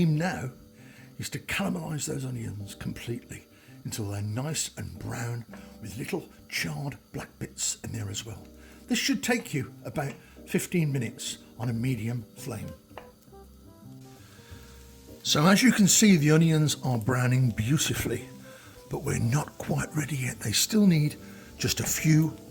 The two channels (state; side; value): identical; both; correlation 1.00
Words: now is to caramelise those onions completely until they're nice and brown with little charred black bits in there as well. This should take you about 15 minutes on a medium flame. So as you can see, the onions are browning beautifully, but we're not quite ready yet. They still need just a few